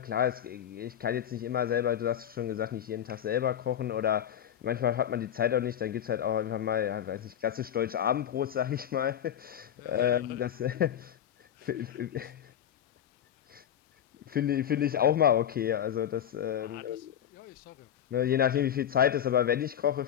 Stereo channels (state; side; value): quieter; right; 9.9 dB